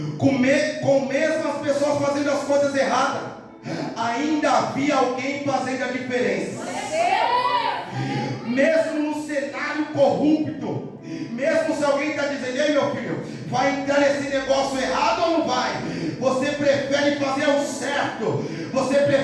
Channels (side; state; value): both; identical; correlation 1.00